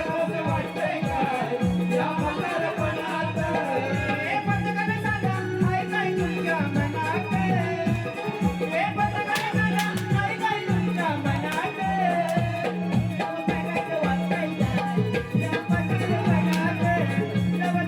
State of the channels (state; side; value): identical; both; correlation 1.00